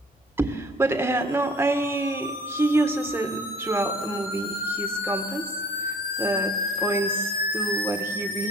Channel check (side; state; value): both; normal; correlation 0.51